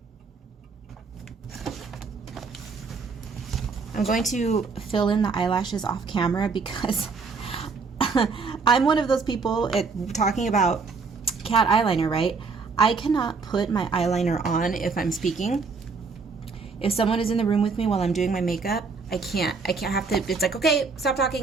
I'm going to fill in the eyelashes off camera because I'm one of those people talking about cat eyeliner, right? I cannot put my eyeliner on if I'm speaking. If someone is in the room with me while I'm doing my makeup, I can't have to, it's like, okay, stop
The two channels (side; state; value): left; quieter; 4.7 dB